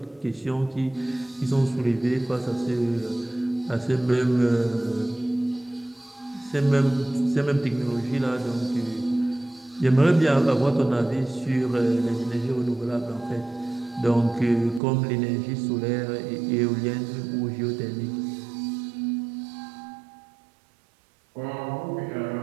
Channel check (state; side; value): drops out; left; at 14.8 s